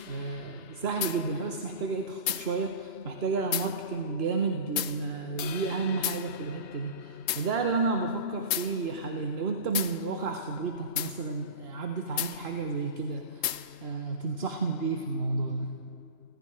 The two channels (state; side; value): late; right; 3.2 ms